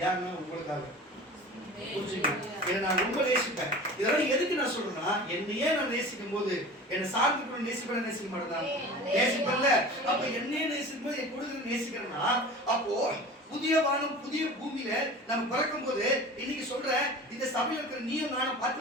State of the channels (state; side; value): normal; both; correlation 0.38